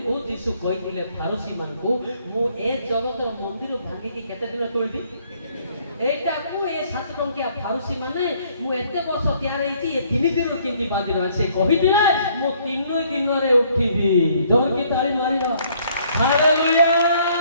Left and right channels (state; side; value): inverted; both; correlation -0.64